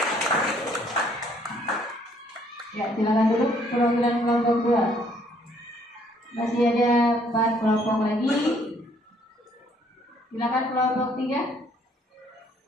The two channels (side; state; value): both; normal; correlation 0.64